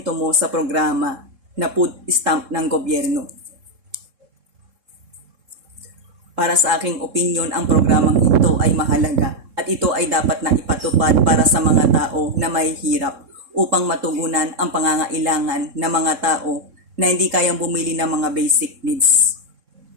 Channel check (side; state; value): left; late; 3.7 ms